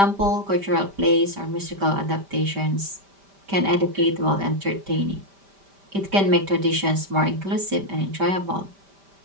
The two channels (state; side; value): late; left; 5.1 ms